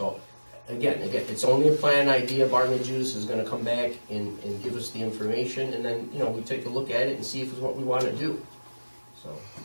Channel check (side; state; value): both; inverted; correlation -1.00